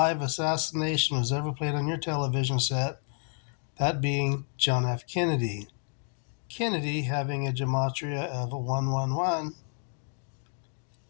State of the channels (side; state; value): right; silent; 58 dB below the other